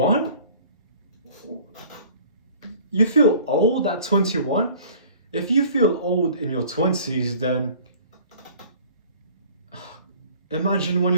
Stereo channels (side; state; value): both; inverted; correlation -0.49